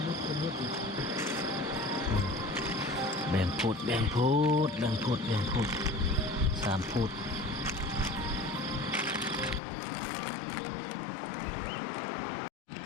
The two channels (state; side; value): drops out; right; at 9.6 s